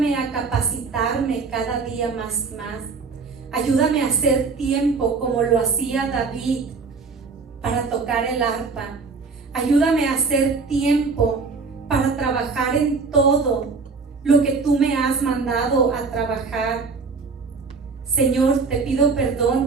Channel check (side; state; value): left; quieter; 4.6 dB